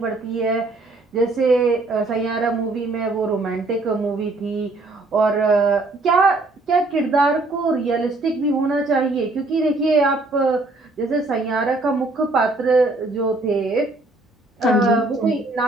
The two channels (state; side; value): quieter; left; 3.0 dB